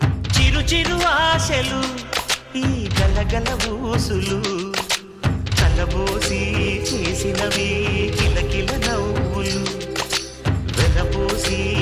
చిరు చిరు ఆశలు ఈ గలగల ఊసులు కలబోసి చేసినవి కిలకిల నవ్వులు వెలబోసి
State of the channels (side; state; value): both; identical; correlation 1.00